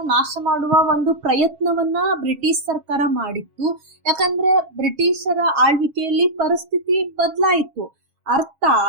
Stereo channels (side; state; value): left; late; 7.3 ms